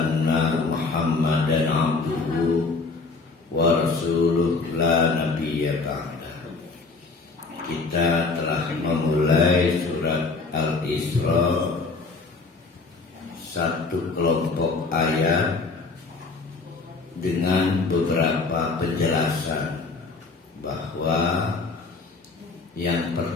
Muhammadan abduhu wa rasuluh la nabiyya ba'dahu. Kita telah memulai surat Al-Isra, satu kelompok ayat dengan beberapa penjelasan bahwa yang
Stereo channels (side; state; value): right; quieter; 4.0 dB